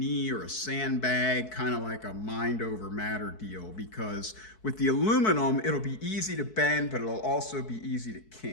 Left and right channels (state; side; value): late; right; 4.6 ms